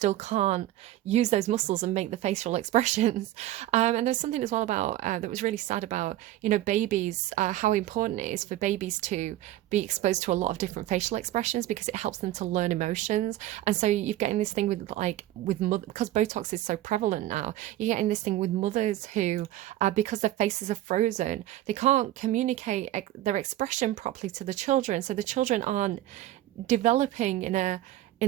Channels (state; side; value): quieter; left; 14.4 dB